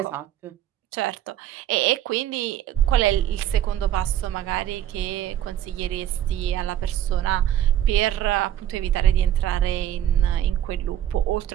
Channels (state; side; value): quieter; left; 11.5 dB